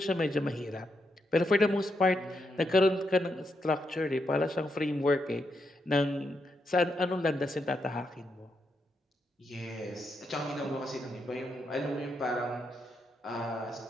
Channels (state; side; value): normal; both; correlation 0.82